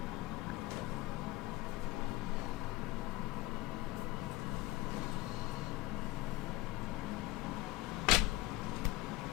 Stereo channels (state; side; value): quieter; right; 17.7 dB